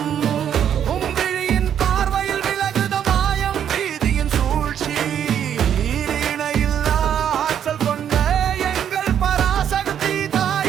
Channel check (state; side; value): quieter; left; 9.2 dB